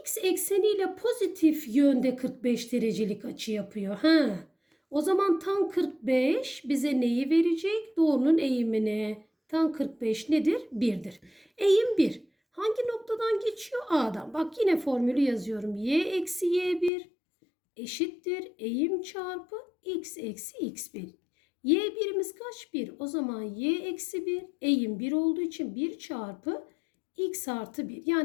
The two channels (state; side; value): drops out; right; at 16.9 s